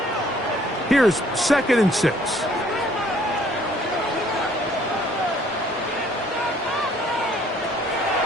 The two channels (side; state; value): both; normal; correlation 0.60